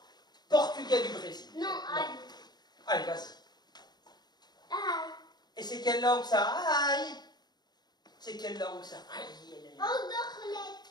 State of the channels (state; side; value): late; right; 0.20 ms